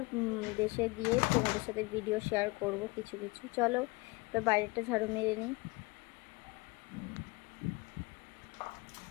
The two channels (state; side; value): quieter; right; 24.9 dB